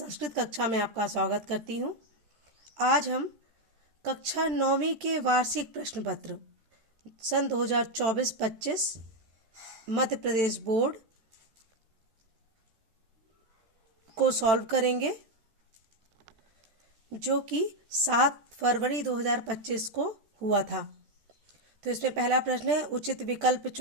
कक्षा में आपका स्वागत करती हूँ। आज हम कक्षा 9वीं के वार्षिक प्रश्न पत्र सन 2024-25 मध्य प्रदेश बोर्ड को सॉल्व करेंगे, जो कि 7 फरवरी 2025 को हुआ था। तो इसमें पहला प्रश्न है, उचित विकल्प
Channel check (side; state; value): left; late; 13 ms